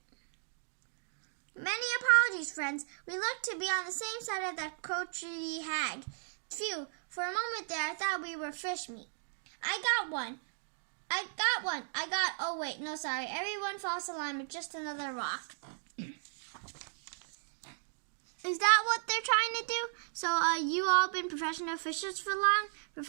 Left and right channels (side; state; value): left; silent; digital silence